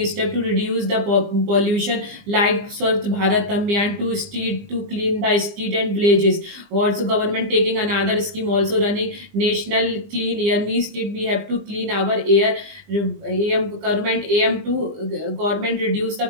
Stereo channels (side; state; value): left; late; 20 ms